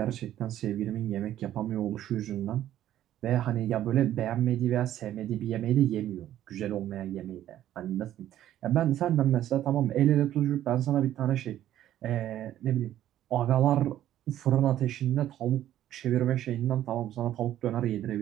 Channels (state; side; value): quieter; left; 12.3 dB